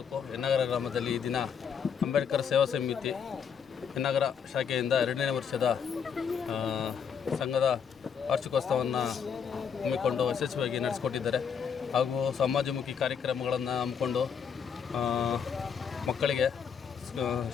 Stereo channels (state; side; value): quieter; right; 7.1 dB